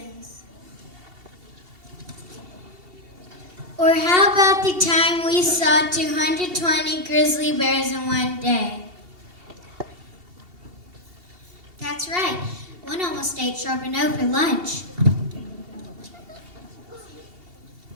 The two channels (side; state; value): left; late; 2.7 ms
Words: Or how about the time we saw 220 grizzly bears in one day? That's right. One almost ate Charbonneau for lunch.